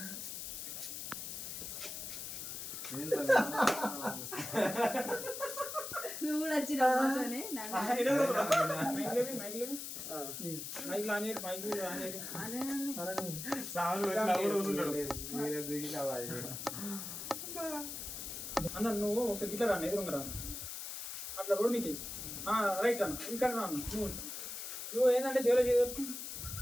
నువ్వు కూడా వచ్చిన అన్న నువ్వు ఒకసారి గిట్లా రాను ఎదురుగా రాను అట్లా రోడ్ మీకు రైట్ అన్న ఇక్కడ రాను నువ్వు ఏంటంటే జైలు చేయవచ్చు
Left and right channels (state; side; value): noise; left; hiss, 7 dB below the sound